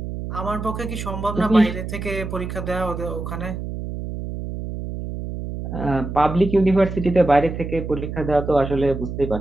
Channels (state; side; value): noise; right; hum, 6 dB below the sound